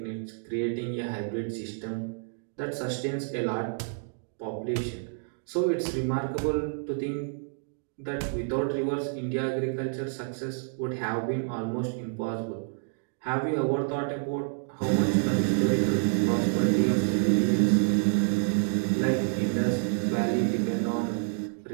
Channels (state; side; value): silent; left; digital silence